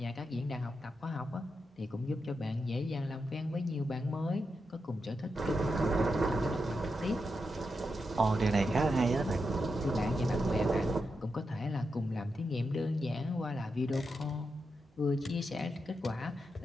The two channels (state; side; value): normal; both; correlation 0.86